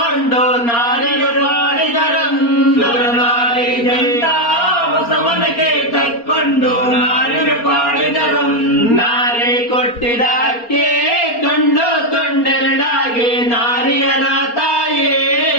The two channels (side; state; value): right; late; 4.3 ms